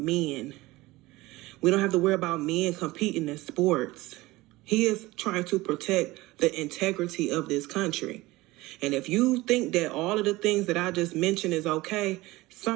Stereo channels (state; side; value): quieter; left; 19.7 dB